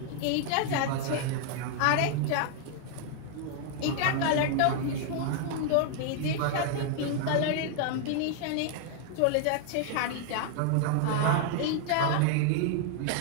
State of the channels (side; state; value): both; different; correlation 0.00